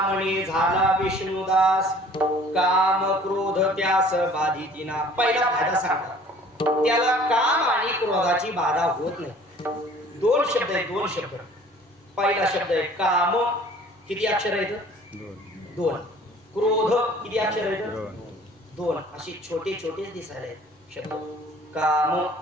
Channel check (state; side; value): normal; both; correlation 0.51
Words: झाला विष्णुदास, काम क्रोध त्यास बाधितीना. पहिला फायदा सांगतात, त्याला काम आणि क्रोधाची बाधा होत नाही. दोन शब्द आहेत, दोन शब्द. पहिला शब्द आहे काम, किती अक्षर आहेत? दोन. क्रोध किती अक्षर आहेत? दोन. अशी छोटे छोटेच दिसायला आहेत शब्द. काम